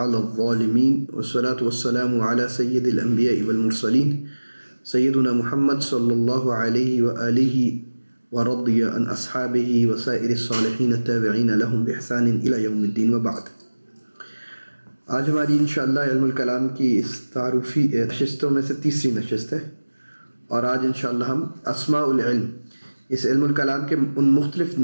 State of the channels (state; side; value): inverted; both; correlation -1.00